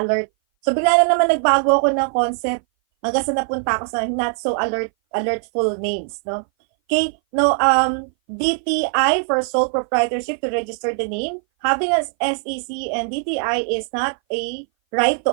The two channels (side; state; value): left; silent; 59 dB below the other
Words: So, bigla na naman nagbago ako ng concept hanggang sa napunta ako sa not so alertful names. No? Okay, no, DTI for sole proprietorship to register the name. Having an SEC and DTI is not a right to